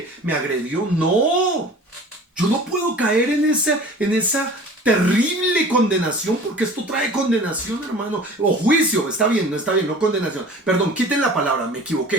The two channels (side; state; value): both; normal; correlation 0.43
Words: me agredió. No. Yo no puedo caer en esa terrible condenación, porque esto trae condenación, hermano. O juicio, está bien, no condenación. Perdón, quiten la palabra, me